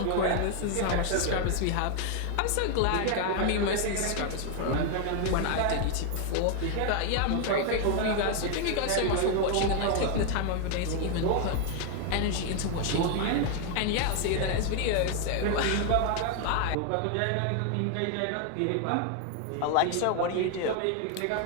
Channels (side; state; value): both; different; correlation 0.00